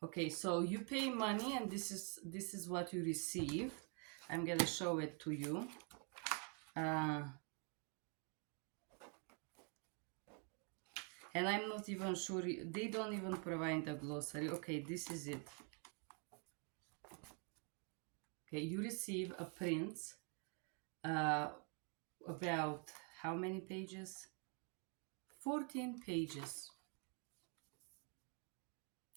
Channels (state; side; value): quieter; left; 38.7 dB